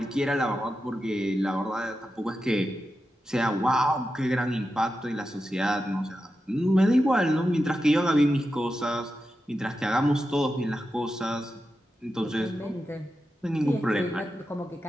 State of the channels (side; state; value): both; normal; correlation 0.90